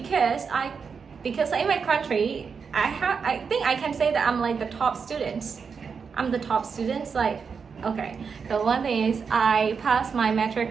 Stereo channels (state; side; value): quieter; left; 5.8 dB